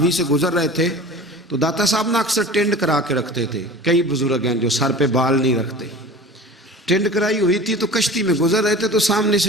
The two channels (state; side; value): normal; both; correlation 0.38